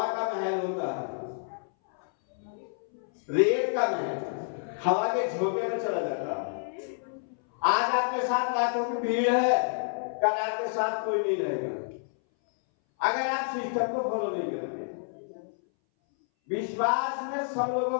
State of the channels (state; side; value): silent; right; 59 dB below the other